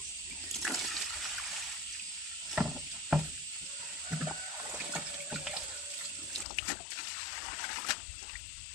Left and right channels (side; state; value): right; drops out; at 6.5 s